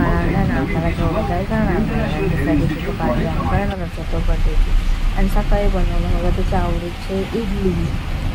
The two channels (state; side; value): identical; both; correlation 1.00